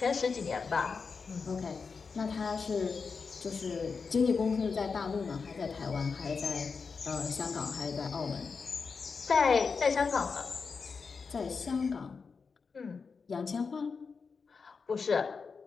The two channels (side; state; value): right; quieter; 5.1 dB